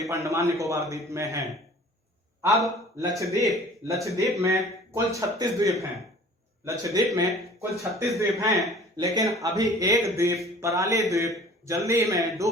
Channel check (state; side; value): normal; both; correlation 0.47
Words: अंडमान निकोबार द्वीप में हैं। अब लक्षद्वीप में कुल 36 द्वीप हैं, लक्षद्वीप में कुल 36 द्वीप हैं, लेकिन अभी एक द्वीप पराली द्वीप जल्दी में